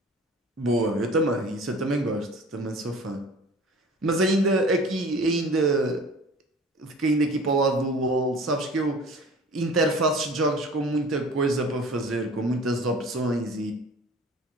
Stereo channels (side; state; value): both; normal; correlation 0.44